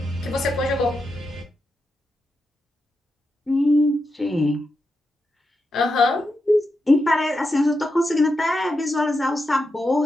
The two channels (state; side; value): normal; both; correlation 0.87